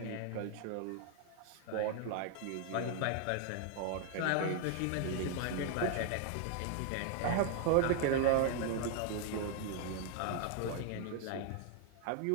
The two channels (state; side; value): different; both; correlation 0.00